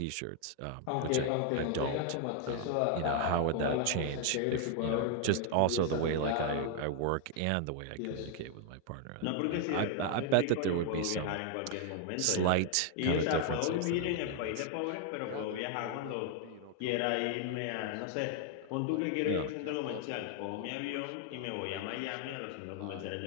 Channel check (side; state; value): both; different; correlation 0.00